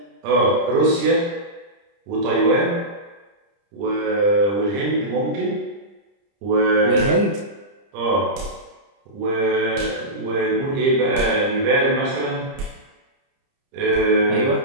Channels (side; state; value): left; late; 30 ms